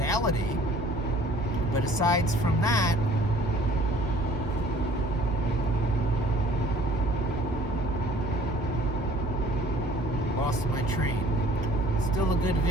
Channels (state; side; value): normal; both; correlation 0.53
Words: But aside from that, lost my train. Still a good